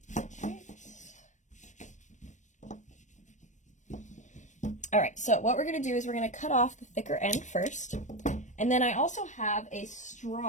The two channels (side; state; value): right; late; 0.35 ms